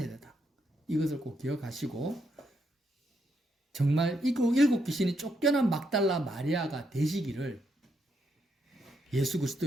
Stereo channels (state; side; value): normal; both; correlation 0.78